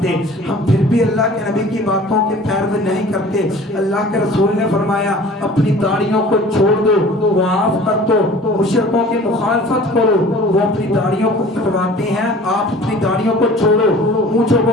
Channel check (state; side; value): normal; both; correlation 0.45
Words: ہم پھر بھی اللہ کے نبی کی باتوں کے پیروی نہیں کرتے۔ اللہ کے رسول نے فرمایا اپنی داڑھیوں کو چھوڑ دو، معاف کر دو، مشرکوں کی مخالفت کرو، وہ اپنی داڑھیوں کو کٹواتے ہیں، آپ اپنی داڑھیوں کو چھوڑو، مونچھوں